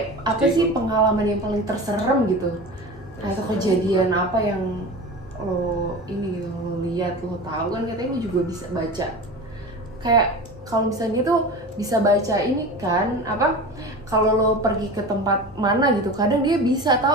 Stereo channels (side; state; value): both; normal; correlation 0.32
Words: apa sih pengalaman yang paling terserem gitu? Atau kejadian apa yang lo ini gitu, lo lihat, lo tahu kan katanya lu juga bisa baca. Kayak kalau misalnya tuh bisa baca ini kan, apa? Kalau lo pergi ke tempat mana gitu, kadang dia bisa